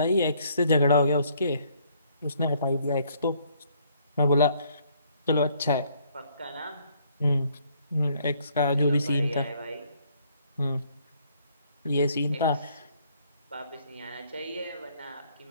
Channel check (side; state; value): both; inverted; correlation -0.65